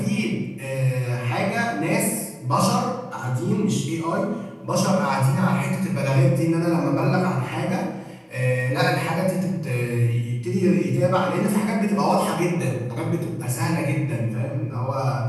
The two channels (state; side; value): identical; both; correlation 1.00